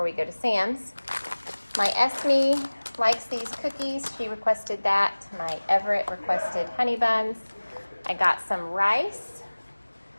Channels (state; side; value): inverted; both; correlation -1.00